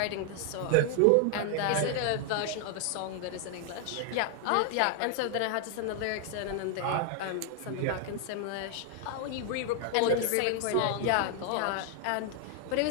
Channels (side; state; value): both; different; correlation 0.00